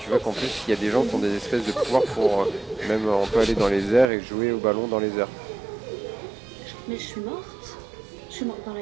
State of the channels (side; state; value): left; drops out; at 4.1 s